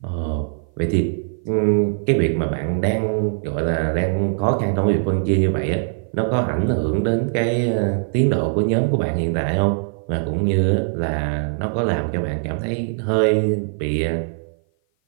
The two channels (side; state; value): left; silent; 56 dB below the other